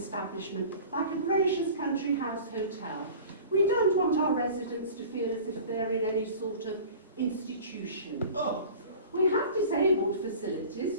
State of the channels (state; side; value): inverted; both; correlation -0.41